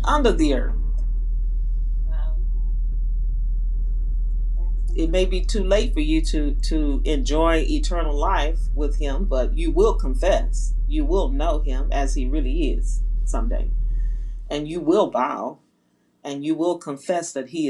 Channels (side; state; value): both; identical; correlation 1.00